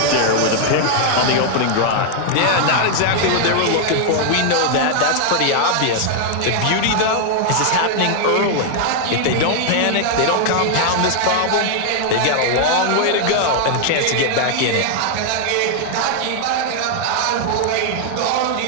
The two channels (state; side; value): different; both; correlation 0.00